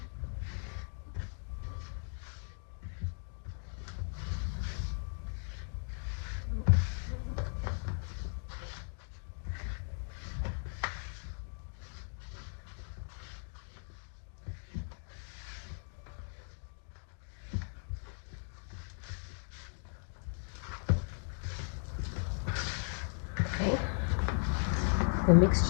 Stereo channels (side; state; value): right; silent; 53 dB below the other